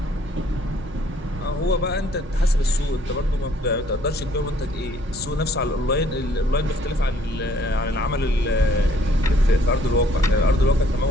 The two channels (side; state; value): both; normal; correlation 0.63